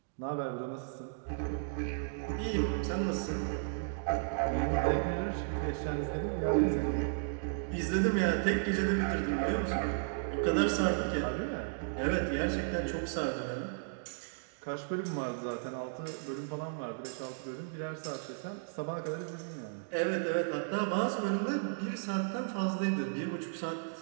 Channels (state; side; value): silent; left; digital silence